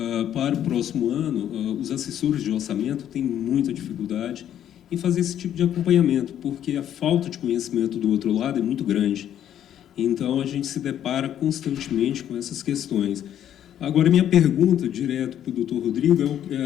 Para o próximo ano, os assessores de orçamento têm muita dificuldade em fazer esse tipo de acompanhamento, porque a falta de conhecimento do outro lado é muito grande. Então, a gente se depara constantemente com essas questões. Agora, minha pergunta, direto para o doutor Rodrigo,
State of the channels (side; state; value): right; quieter; 10.5 dB